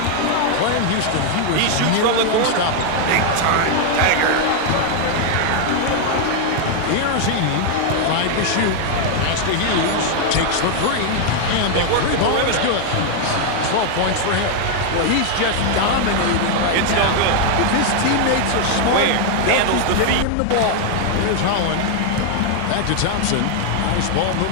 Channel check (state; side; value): different; both; correlation 0.00